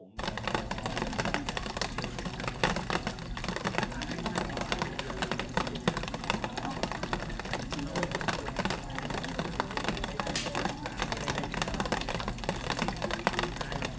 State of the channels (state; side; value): identical; both; correlation 1.00